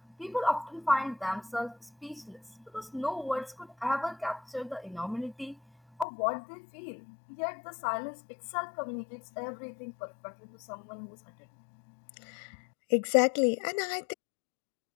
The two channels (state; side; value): drops out; right; at 6.1 s